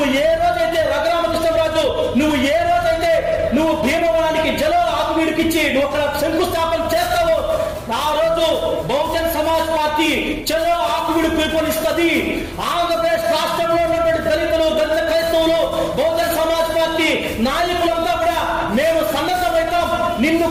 ఏ రోజైతే రఘురామకృష్ణరాజు నువ్వు భీమవరానికి జలో ఆకువీడికిచ్చి నువ్వు అక్కడ శంకుస్థాపన చేస్తావు, ఆ రోజు బహుజన్ సమాజ్ పార్టీ చలో ఆకువీడు పిలుపునిస్తుంది. ఆంధ్రప్రదేశ్ రాష్ట్రంలో ఉన్నటువంటి దళితులు, దళిత క్రైస్తవులు, బహుజన్ సమాజ్ పార్టీ నాయకులంతా కూడా మేము సన్నద్ధమవుతాం, నిన్ను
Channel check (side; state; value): both; identical; correlation 1.00